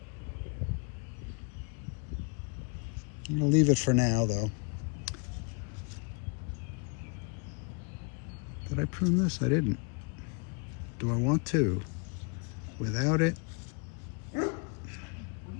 I'm going to leave it for now, though. Did I prune this? I didn't. Do I want to? Without it?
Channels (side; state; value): right; quieter; 34.5 dB